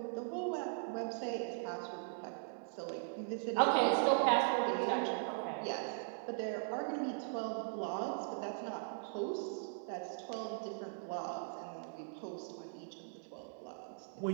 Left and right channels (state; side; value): silent; left; digital silence